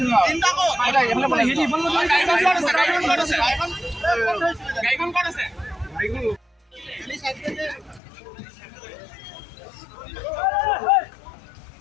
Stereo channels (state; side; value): drops out; right; at 8.0 s